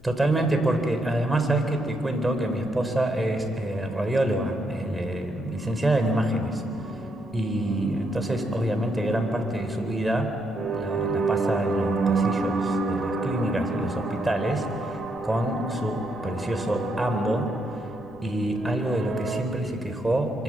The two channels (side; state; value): left; noise; rumble, 23 dB below the sound